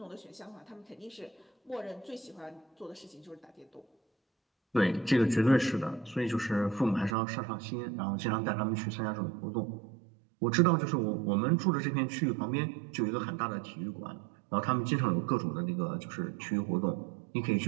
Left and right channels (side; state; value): left; drops out; at 7.2 s